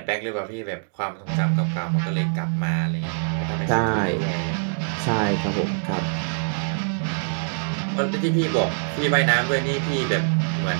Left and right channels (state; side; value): silent; left; digital silence